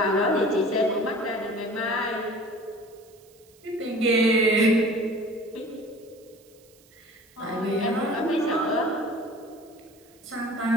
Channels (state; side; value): noise; right; hiss, 29 dB below the sound